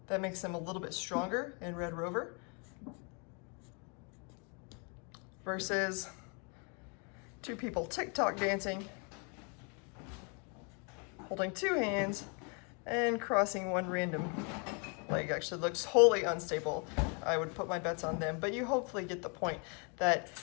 That makes them a little bit stronger in Red Rover. Versus two people TikTok dancing, holding two hands and crossing one random leg. Actually looks wholly unstable. I would put my bets on them, but you hopefully get the point that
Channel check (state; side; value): quieter; right; 35.7 dB